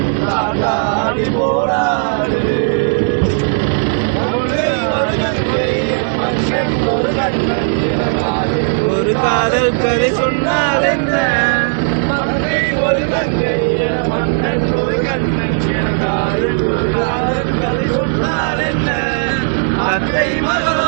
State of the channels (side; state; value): left; silent; digital silence